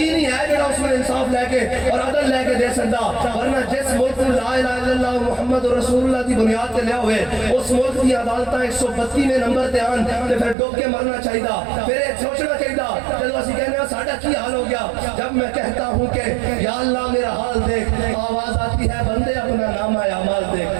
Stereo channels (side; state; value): left; drops out; at 10.6 s